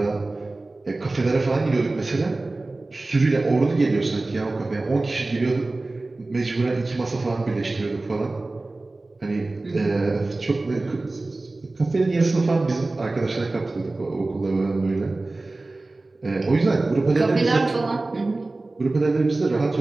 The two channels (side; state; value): left; quieter; 3.1 dB